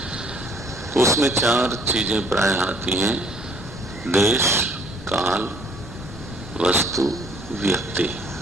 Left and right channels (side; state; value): both; normal; correlation 0.61